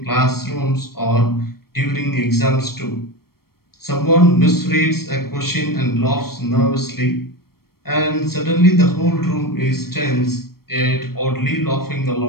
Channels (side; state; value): right; late; 0.94 ms